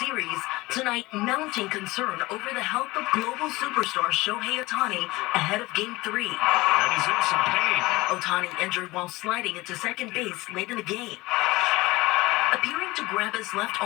Series, tonight mounting concern over the health of global superstar Shohei Ohtani ahead of Game 3. And he's in some pain. Ohtani injured while sliding into second base late in the game, appearing to grab his left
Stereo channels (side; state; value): right; quieter; 20.9 dB